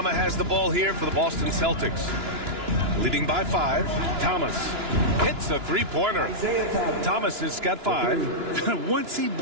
has the ball here for the Boston Celtics. Leading by 5. Thomas hits a 3-pointer. Thomas has got 5. Once he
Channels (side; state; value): left; late; 2.9 ms